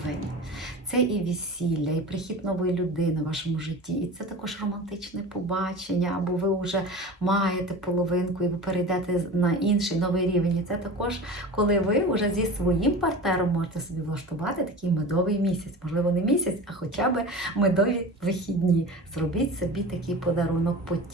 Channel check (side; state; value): both; normal; correlation 0.34